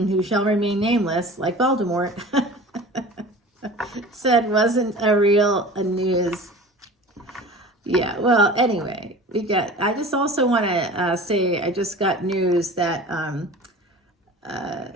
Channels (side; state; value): both; normal; correlation 0.39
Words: shall remain nameless, like Voldemort, said wasn't a real news. Yeah, well, anyway, I just also want to say I just got news that